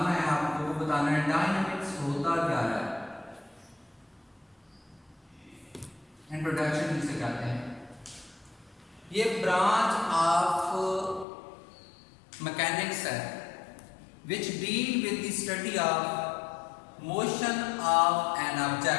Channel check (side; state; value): right; drops out; at 11.2 s